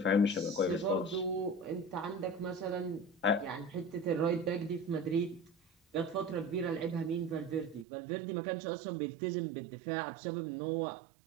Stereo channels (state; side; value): drops out; left; at 7.9 s